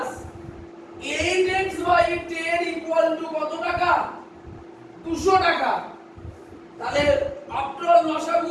8x by 10 equal to কত টাকা? 200 টাকা। তাহলে after all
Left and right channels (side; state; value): both; identical; correlation 1.00